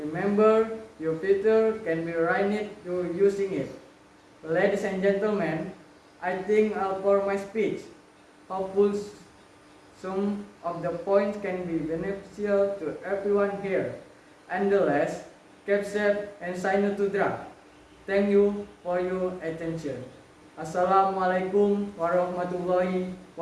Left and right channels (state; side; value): identical; both; correlation 1.00